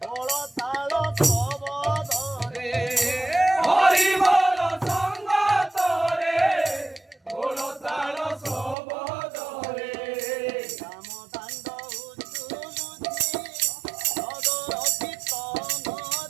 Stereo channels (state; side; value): drops out; left; at 8.8 s